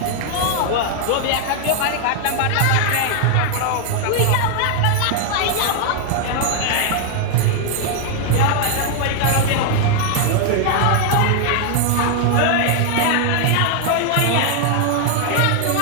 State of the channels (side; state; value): both; different; correlation 0.00